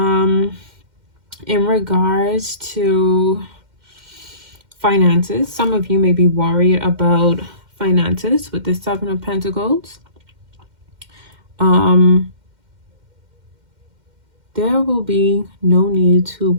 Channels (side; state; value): left; late; 2.1 ms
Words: In regards to finances, some of you may be worried about finances with the 7 of Pentacles. There will be no need to